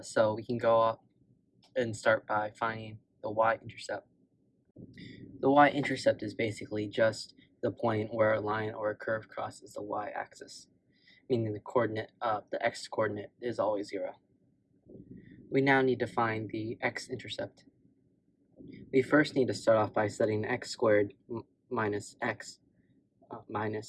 So we can go up and start by finding the y-intercept. The y-intercept is basically just the point where a line or a curve crosses the y-axis, meaning the x-coordinate is always 0. We now need to find the x-intercept. We first need to start off by setting x squared minus x minus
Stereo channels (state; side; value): identical; both; correlation 1.00